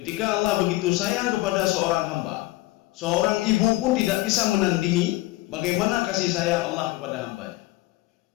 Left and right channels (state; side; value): quieter; right; 19.4 dB